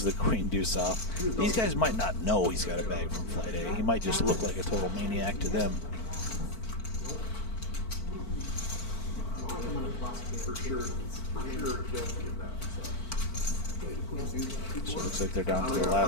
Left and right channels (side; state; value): right; late; 4.5 ms